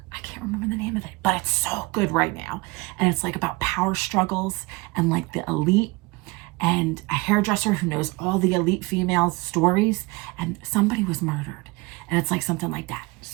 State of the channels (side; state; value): left; quieter; 24.3 dB